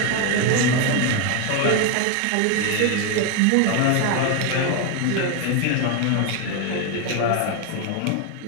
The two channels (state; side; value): different; both; correlation 0.02